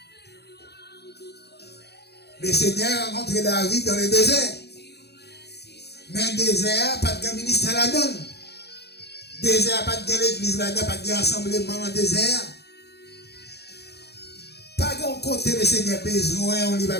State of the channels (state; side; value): late; right; 0.48 ms